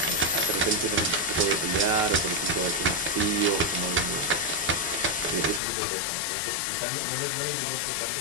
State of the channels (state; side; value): drops out; right; at 5.6 s